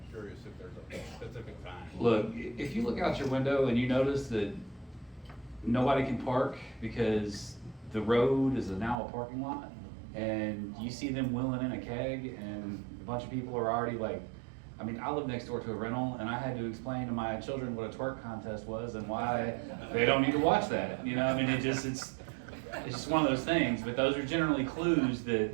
curious if there's a specific time. Look, if you look out your window and you notice that nobody can park because the road is now a parking lot, and you see them wheeling in a keg and a bunch of people are already like, I mean, I live next door to a rental, and I had to explain to my children what a twerk contest was and why they don't need to watch that. You know, I mean, it's just one of those things. But those are generally clues that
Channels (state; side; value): drops out; left; at 9.0 s